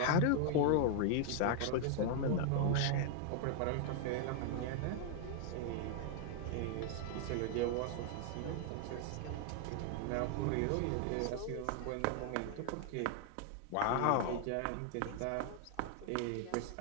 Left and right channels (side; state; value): both; different; correlation 0.00